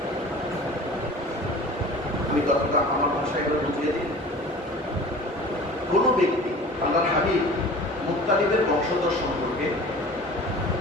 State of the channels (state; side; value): normal; both; correlation 0.41